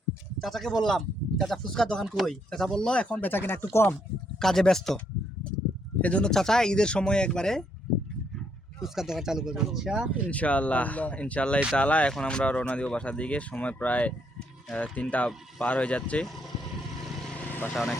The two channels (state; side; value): normal; both; correlation 0.73